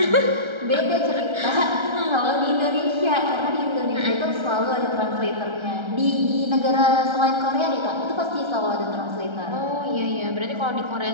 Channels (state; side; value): late; left; 1.3 ms